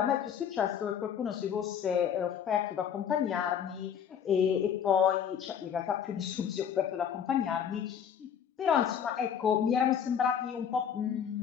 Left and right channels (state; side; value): quieter; right; 8.2 dB